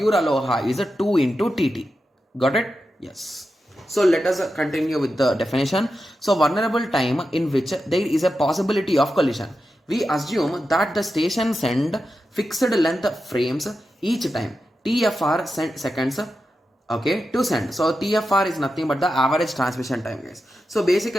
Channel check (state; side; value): normal; both; correlation 0.90